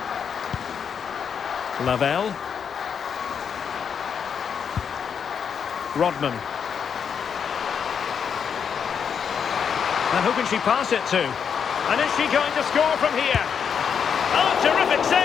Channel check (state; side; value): quieter; right; 7.1 dB